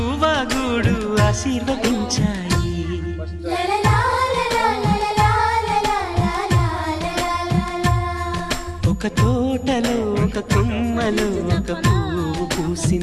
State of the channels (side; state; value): both; identical; correlation 1.00